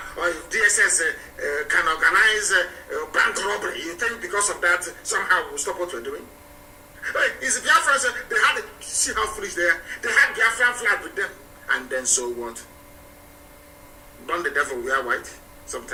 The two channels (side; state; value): both; identical; correlation 1.00